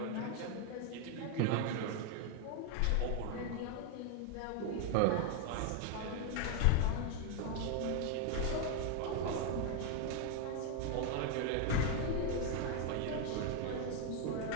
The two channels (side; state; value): both; different; correlation 0.01